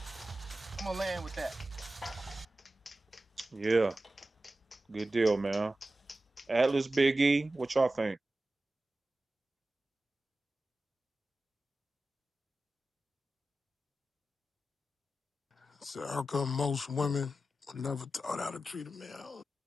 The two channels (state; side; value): normal; both; correlation 0.94